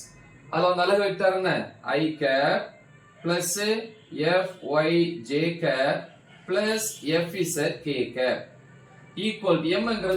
அதுல அலகு வெக்டார் என்ன? I cap plus Fy j cap plus Fz k cap equal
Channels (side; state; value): both; identical; correlation 1.00